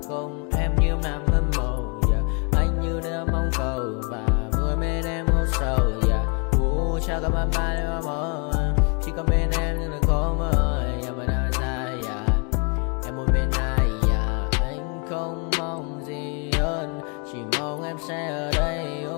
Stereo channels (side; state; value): right; quieter; 36.6 dB